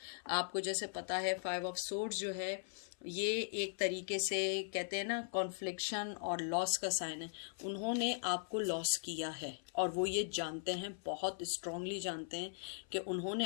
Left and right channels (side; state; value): right; silent; 51 dB below the other